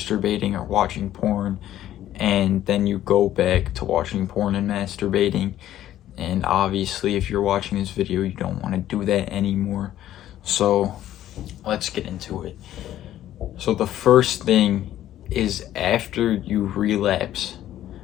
or watching porn, and then you go back to watching porn and masturbating. And obviously, if you're watching this video, you don't want to do that anymore. So let's get into it. So the first thing is, after you relapse,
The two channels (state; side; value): quieter; right; 12.6 dB